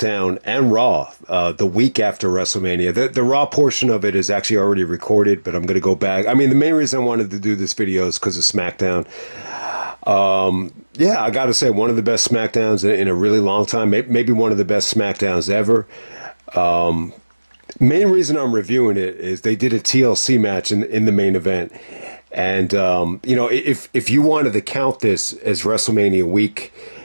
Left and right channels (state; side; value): inverted; both; correlation -1.00